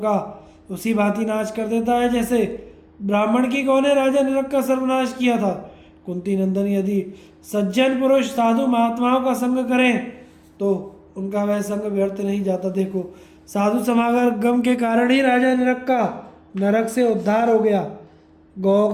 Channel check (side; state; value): both; identical; correlation 1.00